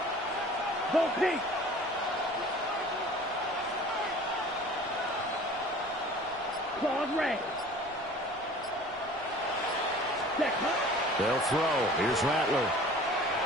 Go pink. Claude Ray. They'll throw. Here's Rattler.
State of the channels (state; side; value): noise; left; rumble, 25 dB below the sound